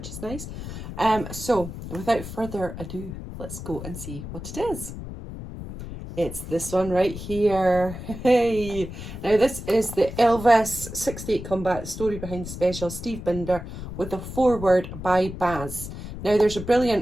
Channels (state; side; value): noise; left; rumble, 10 dB below the sound